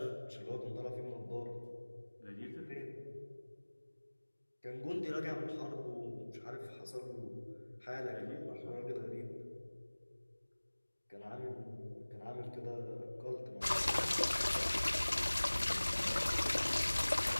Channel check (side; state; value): both; inverted; correlation -1.00